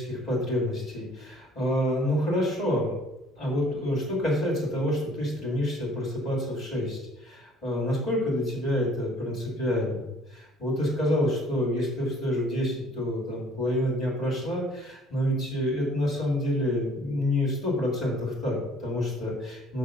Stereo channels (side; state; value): both; normal; correlation 0.57